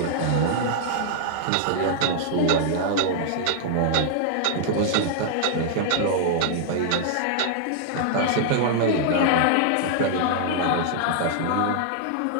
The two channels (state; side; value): different; both; correlation -0.01